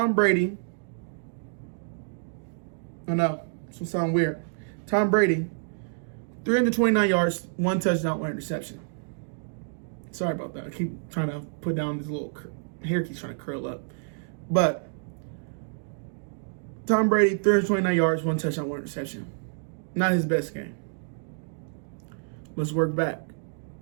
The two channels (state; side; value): silent; left; digital silence